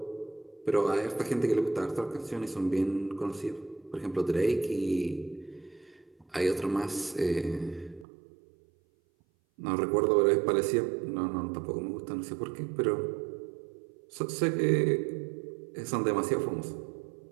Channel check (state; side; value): drops out; left; at 8.1 s